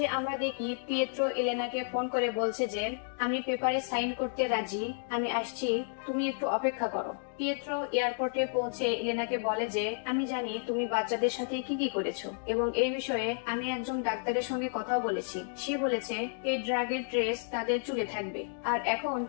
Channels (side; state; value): right; silent; digital silence